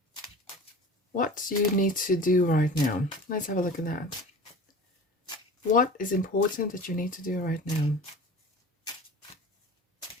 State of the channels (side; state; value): both; normal; correlation 0.37